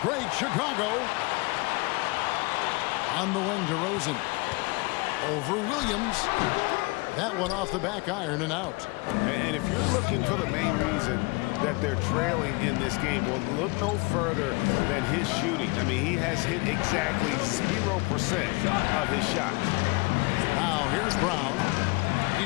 break, Chicago. On the wing, DeRozan. Over Williams. That one off the back iron and out. And if you're looking for the main reason that they're trailing in this game, well, look no further than his shooting. I mean, he has hit exactly 0% of his shots. Now, here's Brown.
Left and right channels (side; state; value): right; quieter; 26.5 dB